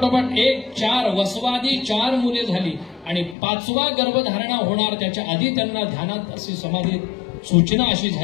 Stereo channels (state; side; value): drops out; right; at 3.4 s